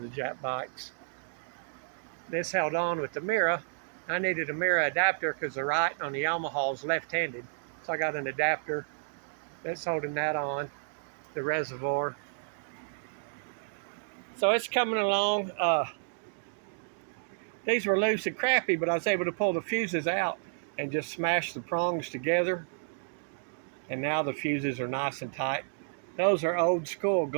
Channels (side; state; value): left; silent; digital silence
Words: Jap bikes. This held on with the mirror. I needed a mirror adapter because the right on the Yamaha is left-handed. So I got an adapter that's holding that on, the reservoir. So it's coming along. These were loose and crappy, but I was able to pull the fuses out and just smash the prongs together. And now the fuses are nice and tight. Those are old school